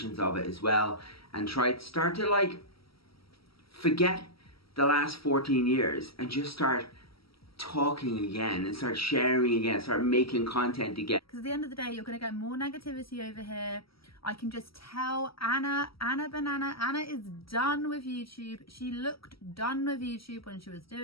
of it as well, and start to like forget the last 14 years and just start talking again and start sharing again, start making content again. Because at the end of the day, you're going to get more negativity over here. I can just tell Anna is done with YouTube. She looked done with YouTube when she was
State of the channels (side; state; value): right; late; 0.75 ms